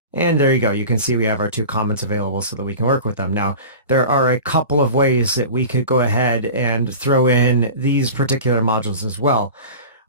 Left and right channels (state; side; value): inverted; both; correlation -0.34